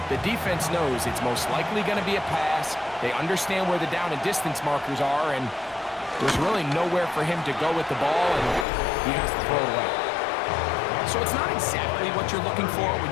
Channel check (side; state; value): right; drops out; at 8.7 s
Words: the defense knows it's most likely going to be a pass. They understand where the down and distance markers are, and there's really nowhere for him to go with the ball, and he has to throw it away. So it's not exactly what you're looking for when